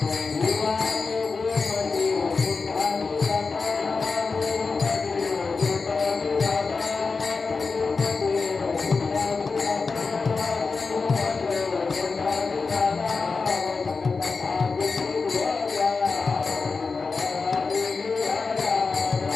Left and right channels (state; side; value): quieter; right; 4.5 dB